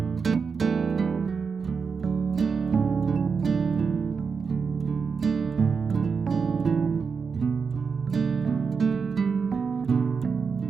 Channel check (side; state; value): left; quieter; 5.5 dB